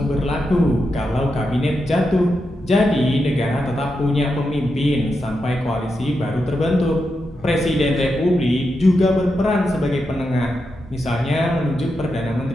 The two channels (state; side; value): normal; both; correlation 0.86